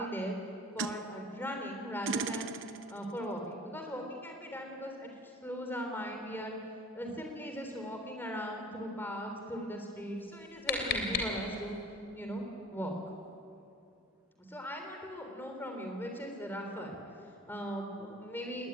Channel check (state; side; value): normal; both; correlation 0.45